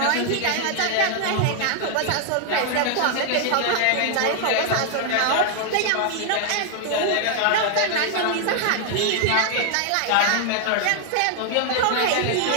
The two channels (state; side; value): different; both; correlation 0.00